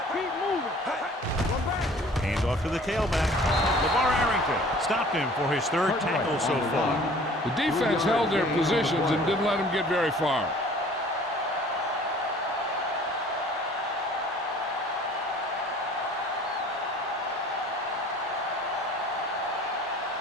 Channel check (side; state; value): both; normal; correlation 0.50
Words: Keep moving. Run back. Hands off to the tailback. LeVar Arrington stopped him for his third tackle so far. The defense held their positions and didn't let them get very far.